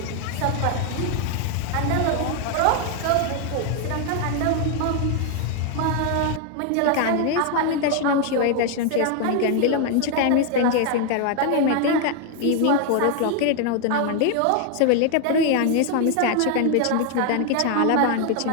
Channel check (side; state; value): both; different; correlation 0.01